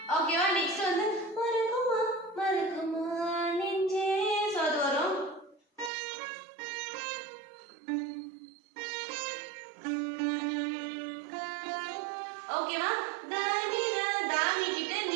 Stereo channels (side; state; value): left; drops out; at 5.9 s